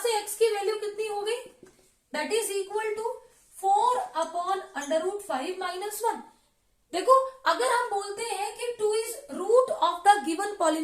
से x की वैल्यू कितनी हो गई, that is equal to 4 upon under root 5 minus 1. देखो अगर हम बोलते हैं कि 2 is root of the given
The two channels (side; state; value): both; identical; correlation 1.00